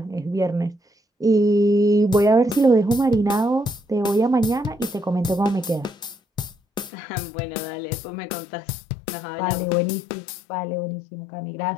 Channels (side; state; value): right; drops out; at 6.9 s